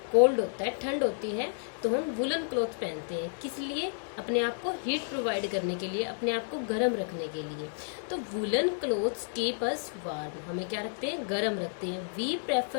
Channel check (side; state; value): right; silent; digital silence